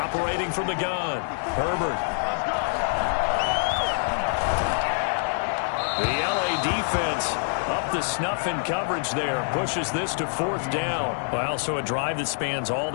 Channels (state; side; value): silent; right; digital silence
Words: from the gun, Herbert. The LA defense up the snuff in coverage there. Pushes this to 4th down. Well, so a drive that spans all